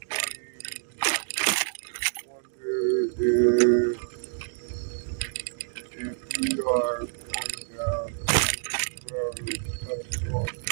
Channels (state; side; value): silent; left; 60 dB below the other